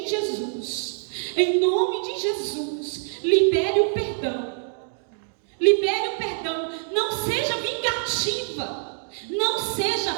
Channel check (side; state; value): left; silent; digital silence